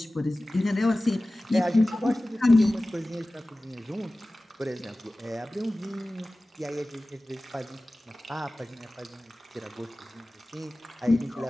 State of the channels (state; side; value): normal; both; correlation 0.97